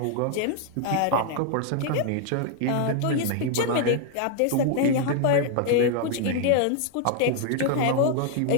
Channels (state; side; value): different; both; correlation 0.00